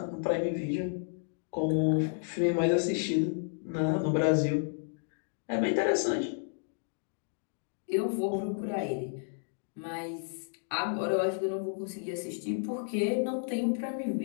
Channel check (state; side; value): silent; right; digital silence